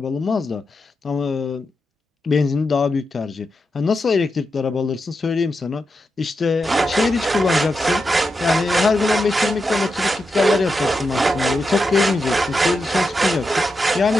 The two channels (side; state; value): both; normal; correlation 0.87